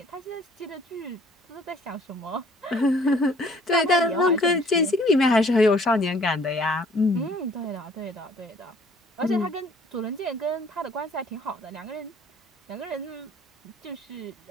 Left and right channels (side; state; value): both; normal; correlation 0.57